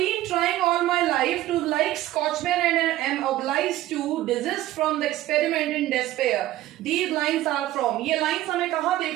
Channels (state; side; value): quieter; left; 15.0 dB